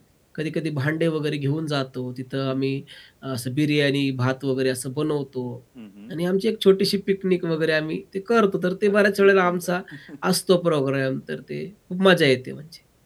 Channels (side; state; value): both; identical; correlation 1.00